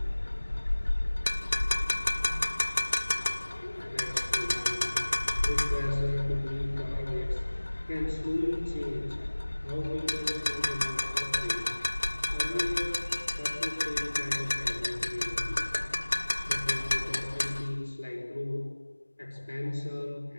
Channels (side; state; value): both; inverted; correlation -1.00